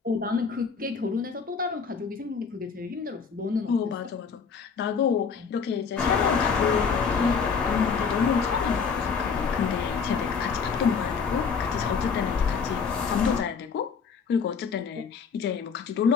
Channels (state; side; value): quieter; right; 5.8 dB